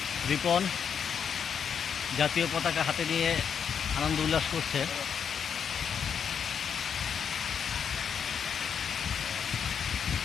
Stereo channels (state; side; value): quieter; right; 7.3 dB